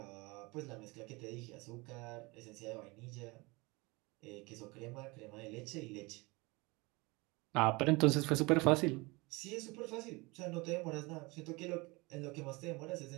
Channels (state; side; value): quieter; left; 25.2 dB